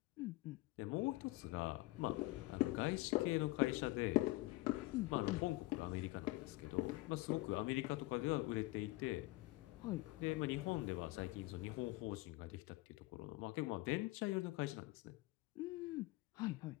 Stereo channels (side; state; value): right; quieter; 20.3 dB